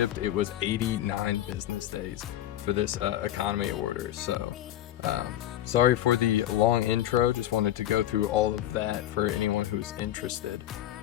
it was 89 business days for this economy order. So sorry for the long intro, just wanted to go through all of that for anyone who's interested.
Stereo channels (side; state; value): right; quieter; 12.9 dB